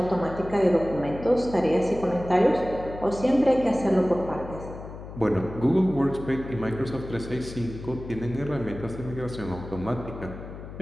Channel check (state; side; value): noise; left; hum, 12 dB below the sound